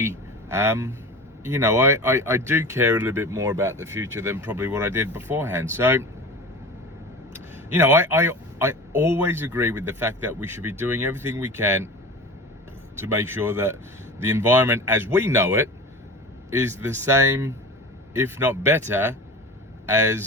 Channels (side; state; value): both; normal; correlation 0.34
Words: I do care a little bit more about the future than probably what I did beforehand. So, I always agree with the fact that we should be doing everything we can to make sure that the environment as we know it is the same, if not better,